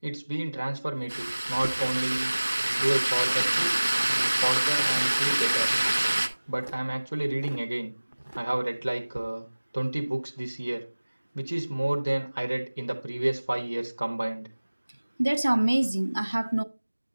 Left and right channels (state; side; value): inverted; both; correlation -1.00